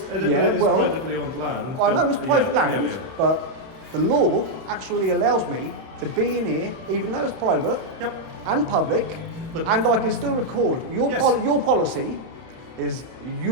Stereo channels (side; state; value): left; late; 31 ms